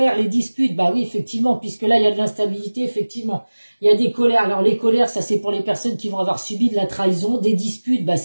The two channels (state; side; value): inverted; both; correlation -1.00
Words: les disputes. Bah oui, effectivement, puisque là, il y a de l'instabilité, effectivement. Il y a des colères. Alors, les colères, ça, c'est pour les personnes qui vont avoir subi de la trahison. Des disputes, bah